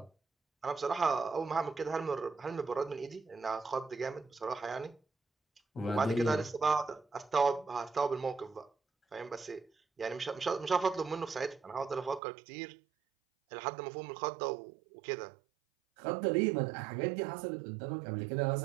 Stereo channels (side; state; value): left; drops out; at 12.2 s